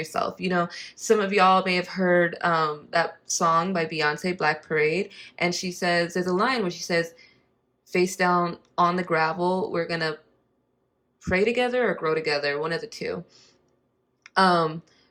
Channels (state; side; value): identical; both; correlation 1.00